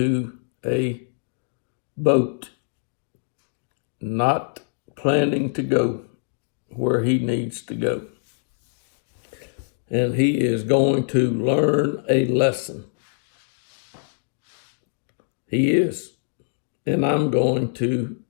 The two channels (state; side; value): silent; right; digital silence